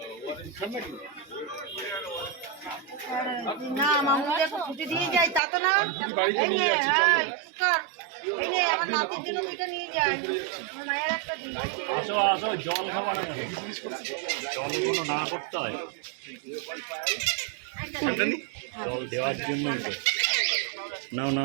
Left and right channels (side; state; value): left; drops out; at 5.4 s